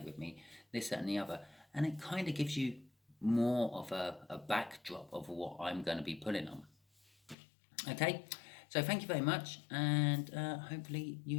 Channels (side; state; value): right; drops out; at 7.4 s